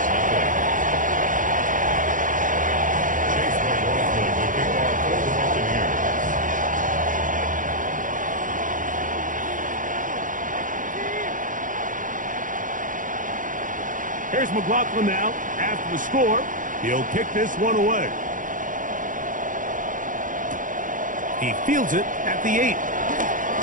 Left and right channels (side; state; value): left; late; 0.38 ms